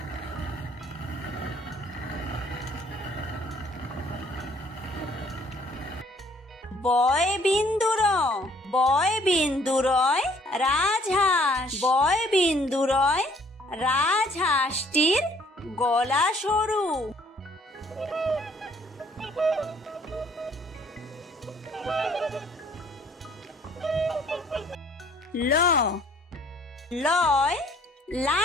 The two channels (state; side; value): normal; both; correlation 0.60